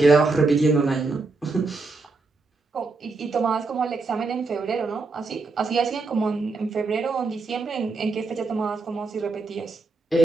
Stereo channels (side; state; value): left; quieter; 3.9 dB